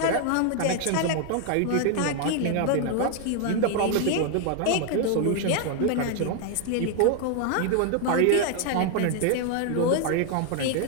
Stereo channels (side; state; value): both; different; correlation 0.00